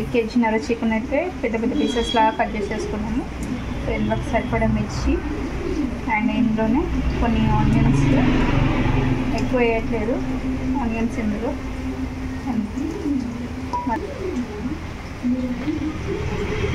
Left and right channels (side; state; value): both; identical; correlation 1.00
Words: కేజీన్నర చికెన్ అయితే పెద్ద పెద్ద పీసెస్ లాగా కట్ చేసేసుకున్నాము. సో ఇందులోకి సరిపడా మిర్చి అండ్ ఇందులోనే కొన్ని ఆనియన్స్, ఎక్కువ వేయట్లేదు ఆనియన్స్ ఇందులో.